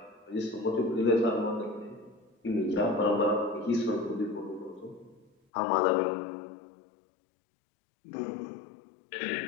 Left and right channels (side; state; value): right; drops out; at 5.3 s